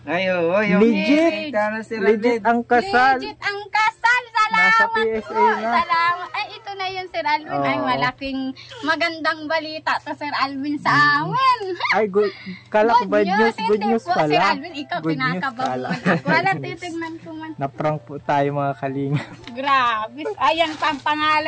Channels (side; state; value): both; identical; correlation 1.00